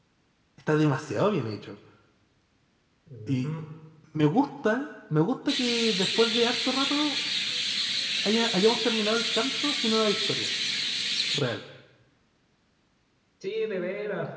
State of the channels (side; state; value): both; identical; correlation 1.00